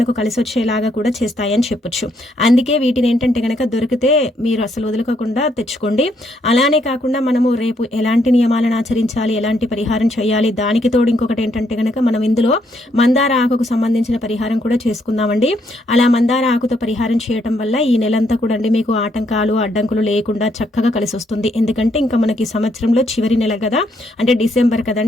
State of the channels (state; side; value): normal; both; correlation 0.73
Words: కలిసి వచ్చేలాగా కూడా చేస్తాయని చెప్పొచ్చు. అందుకే వీటిని ఏంటంటే గనక దొరికితే మీరు అసలు వదులుకోకుండా తెచ్చుకోండి. అలానే కాకుండా మనము రేపు ఎలాంటి నియమాలను ఆచరించాలి, ఎలాంటి పరిహారం చేయాలి, దానికి తోడు ఇంకొకటి ఏంటంటే గనక మనం ఇందులో మందార ఆకుకు సంబంధించిన పరిహారం కూడా చేసుకుందామండి. అలా మందార ఆకుతో పరిహారం చేయటం వల్ల ఈ నెలంతా కూడా అండి మీకు ఆటంకాలు అడ్డంకులు లేకుండా చక్కగా కలిసి వస్తుంది. ఎందుకంటే ఇంకా మనకి సంవత్సరంలో చివరి నెల కదా, అంటే డిసెంబర్